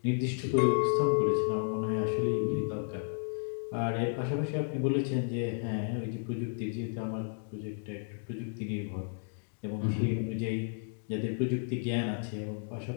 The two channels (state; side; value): silent; right; digital silence